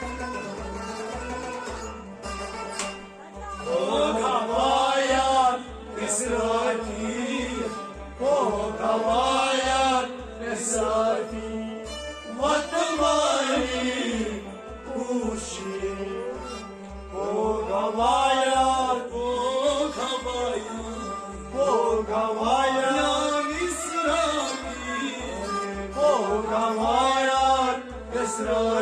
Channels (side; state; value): both; identical; correlation 1.00